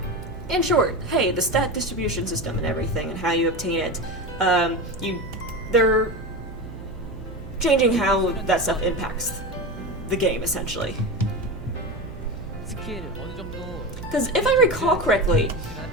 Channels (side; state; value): right; noise; hum, 13 dB below the sound